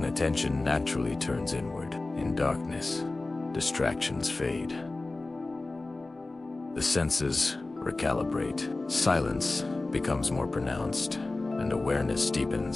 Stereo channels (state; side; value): quieter; right; 3.2 dB